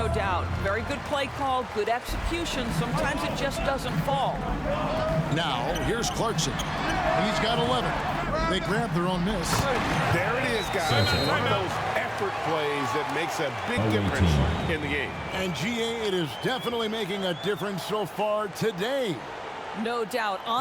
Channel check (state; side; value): identical; both; correlation 1.00